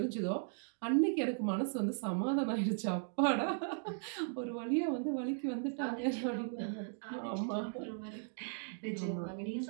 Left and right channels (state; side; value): silent; left; digital silence